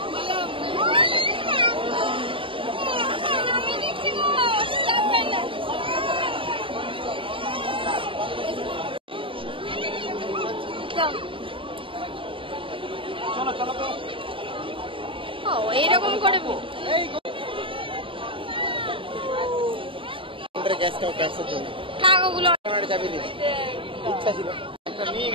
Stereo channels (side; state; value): left; late; 0.25 ms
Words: এইরকম করে থাক, ওগুলো